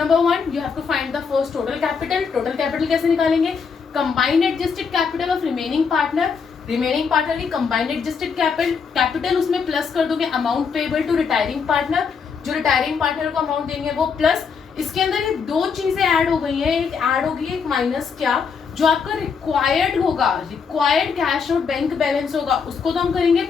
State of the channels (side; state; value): right; quieter; 5.9 dB